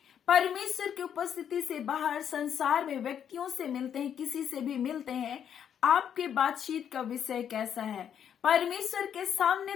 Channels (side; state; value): right; quieter; 8.8 dB